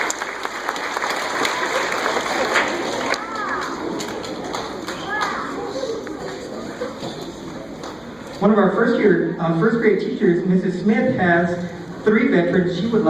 One of our first grade teachers, Mrs. Smith, has 3 veterans she would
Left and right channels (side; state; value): right; noise; hum, 29 dB below the sound